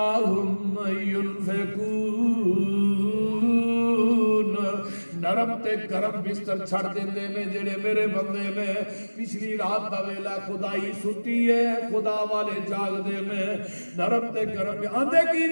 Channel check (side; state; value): both; inverted; correlation -1.00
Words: ينفقون نرم تے گرم بستر چھڑ دیندے نے جڑے میرے بندے نے پچھلی رات دا ویلا خدائی ستی ہے خدا والے جاگ دے میں نرم تے گرم آندے کی